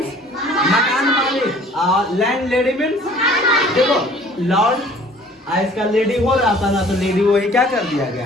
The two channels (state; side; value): normal; both; correlation 0.52